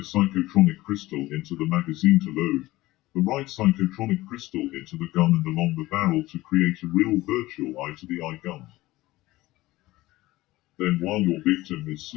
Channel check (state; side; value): quieter; right; 18.2 dB